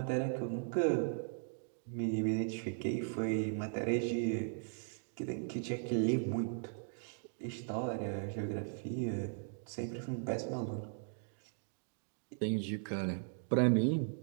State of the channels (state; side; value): silent; left; digital silence